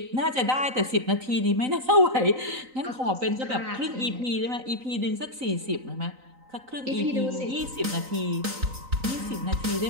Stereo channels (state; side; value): late; left; 3.9 ms